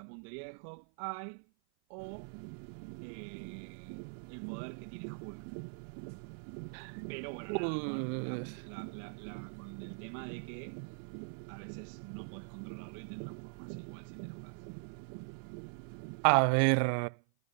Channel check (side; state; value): left; silent; 51 dB below the other